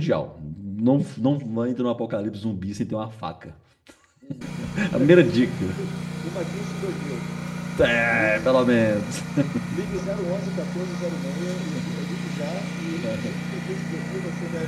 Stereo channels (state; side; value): identical; both; correlation 1.00